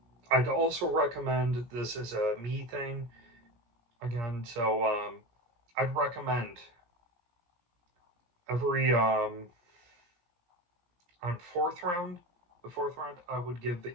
also recommend, this is a me thing again, so I'd recommend every on the fourth round, I would give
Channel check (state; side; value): late; left; 17 ms